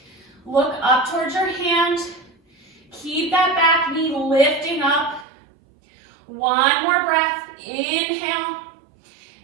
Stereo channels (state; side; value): drops out; left; at 5.2 s